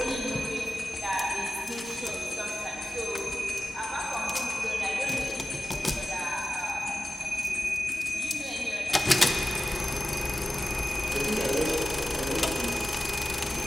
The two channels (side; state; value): both; normal; correlation 0.94